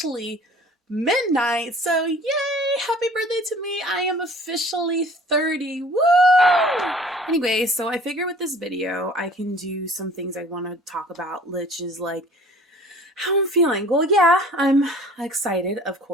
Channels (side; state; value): both; normal; correlation 0.49